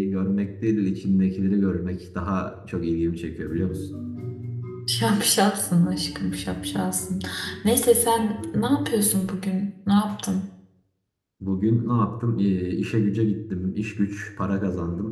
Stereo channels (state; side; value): identical; both; correlation 1.00